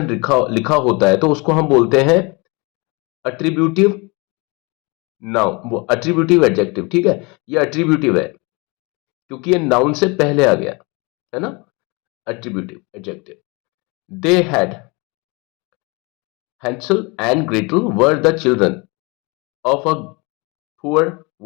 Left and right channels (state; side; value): quieter; right; 28.1 dB